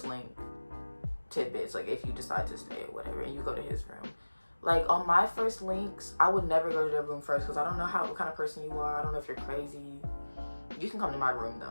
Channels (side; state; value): both; inverted; correlation -1.00